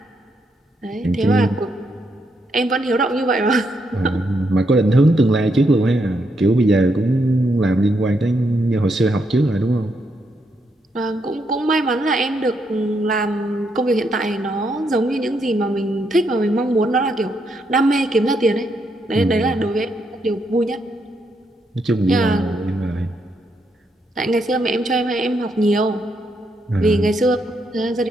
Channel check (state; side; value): normal; both; correlation 0.78